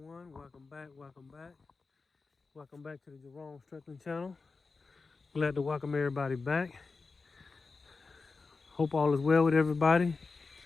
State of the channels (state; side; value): quieter; right; 4.2 dB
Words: Welcome back, welcome back. Welcome back to the Jerome Strickland channel. Glad to welcome everybody back. Hope all is well with everybody.